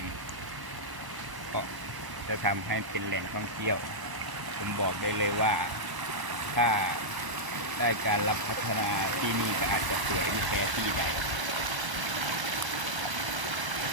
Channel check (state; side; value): late; left; 1.0 ms